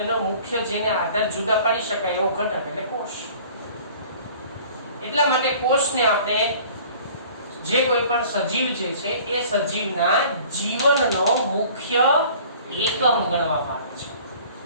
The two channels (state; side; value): inverted; both; correlation -0.49